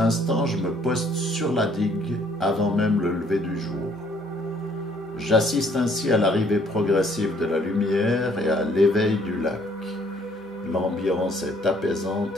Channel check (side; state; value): both; normal; correlation 0.63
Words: je me poste sur la digue avant même le lever du jour. J'assiste ainsi à l'arrivée progressive de la lumière et à l'éveil du lac. L'ambiance est